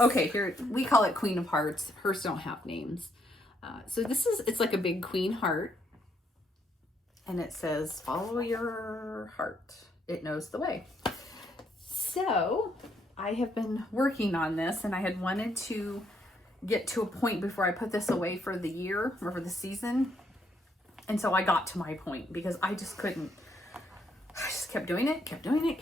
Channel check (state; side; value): normal; both; correlation 0.73